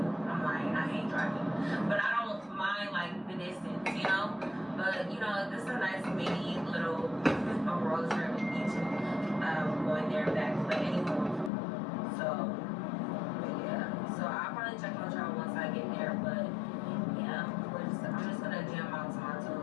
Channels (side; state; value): right; drops out; at 11.5 s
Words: I'm lying. I hate driving, but I don't mind like the distance, you know. But you know, this is a nice mini little road trip each going there and back. But anyway, so. So I'll probably check on y'all once I get there, but yeah, I'm just gonna jam out to my